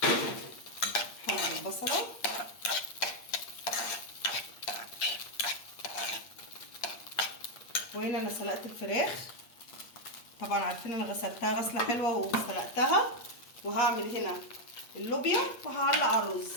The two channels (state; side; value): late; right; 8.6 ms